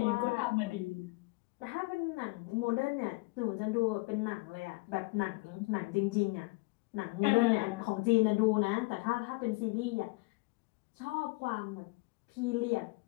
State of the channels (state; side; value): quieter; right; 26.1 dB